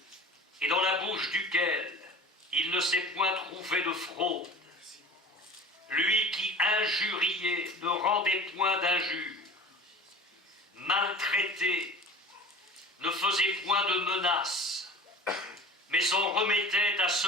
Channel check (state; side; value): normal; both; correlation 0.39